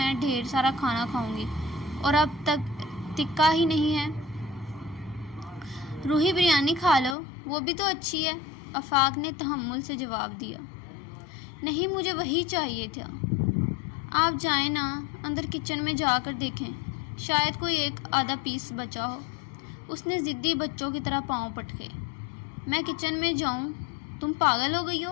ڈھیر سارا کھانا کھاؤں گی اور اب تک ٹکا ہی نہیں ہے۔ روحی، بریانی کھا لو، وہ بھی تو اچھی ہے، آفاق نے تحمل سے جواب دیا۔ نہیں، مجھے وہی چاہیے تھا۔ آپ جائیں نا، اندر کچن میں جا کر دیکھیں، شاید کوئی ایک آدھا پیس بچا ہو۔ اس نے ضدی بچوں کی طرح پاؤں پٹکے۔ میں کچن میں جاؤں؟ تم پاگل ہو گئی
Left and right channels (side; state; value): right; drops out; at 7.2 s